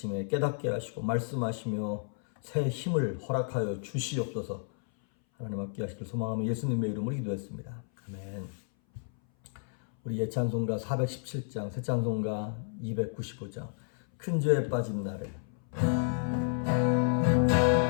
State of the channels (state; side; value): silent; right; 57 dB below the other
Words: 깨닫게 하시고 말씀하시며 새 힘을 허락하여 주시옵소서. 하나님 함께 하시길 소망하며 예수님의 이름으로 기도했습니다. 아멘. 우리 예찬송가 417장, 새 찬송가 295장 큰 죄에 빠진 나를.